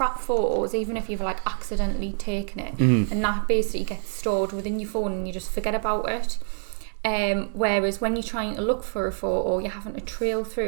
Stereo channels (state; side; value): silent; left; 61 dB below the other